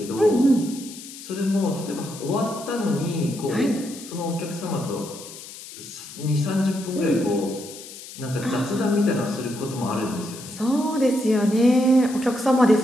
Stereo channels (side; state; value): left; noise; hiss, 14 dB below the sound